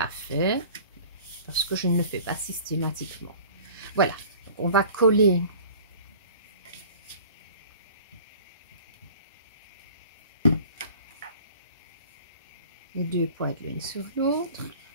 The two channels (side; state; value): both; inverted; correlation -0.45